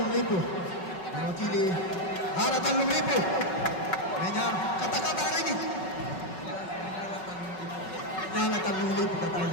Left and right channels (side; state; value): right; late; 5.4 ms